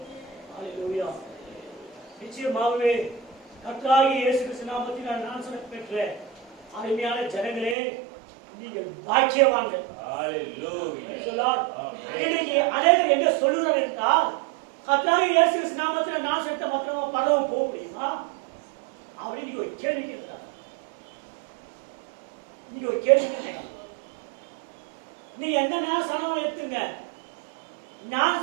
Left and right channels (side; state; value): left; drops out; at 7.8 s